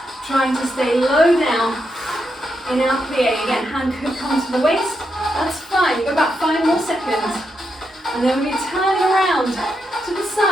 trying to stay low down in our plie. Again, hand could come to the waist. That's fine. You've got about 5 more seconds. And then we'll be turning around to the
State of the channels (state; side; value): normal; both; correlation 0.83